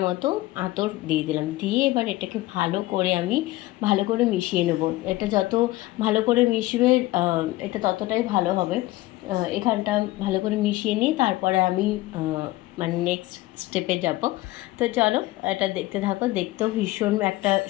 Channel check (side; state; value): right; quieter; 18.1 dB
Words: মতো আতর দিয়ে দিলাম। দিয়ে এবার এটাকে ভালো করে মিশিয়ে নেব। এটা যত ভালো করে মিশবে এটা ততটাই ভালো হবে। এখানটা ভালো করে মিশিয়ে নিই, তারপরে আমি মানে নেক্সট স্টেপে যাব। তো চলো এটা দেখতে থাকো। দেখতেও ভীষণ একটা